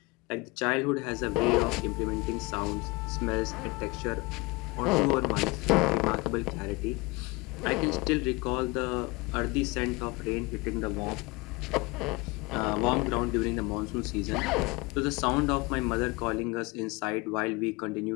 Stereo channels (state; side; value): quieter; right; 25.0 dB